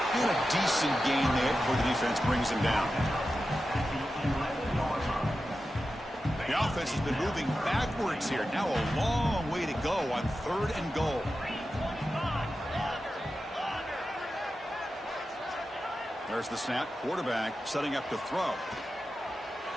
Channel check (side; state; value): both; normal; correlation 0.92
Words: And a decent gain there before the defense brings him down. The offense has been moving backwards here. Now a long way to go on third and goal. There's the snap. Quarterback setting up to throw.